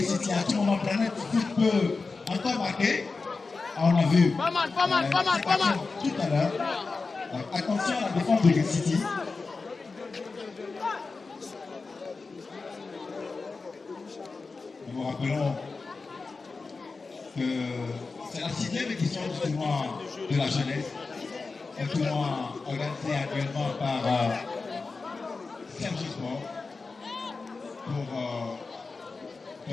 City. À tout moment, Planet Foot peut encore marquer. On a vu pas mal. Tout à l'heure. Attention à la défense de Gate City. Nous vous rappelons que c'est la 6e édition du tournoi de la jeunesse. Un tournoi organisé actuellement par Serge Sport pour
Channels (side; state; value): right; quieter; 4.1 dB